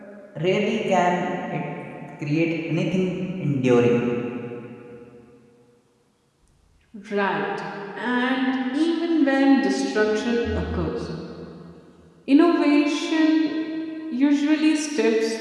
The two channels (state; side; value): identical; both; correlation 1.00